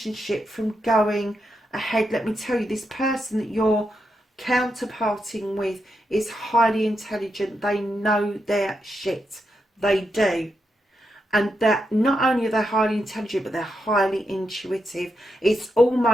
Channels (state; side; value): normal; both; correlation 0.84